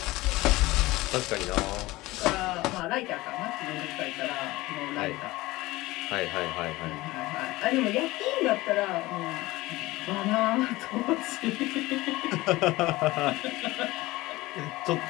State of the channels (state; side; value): quieter; right; 19.5 dB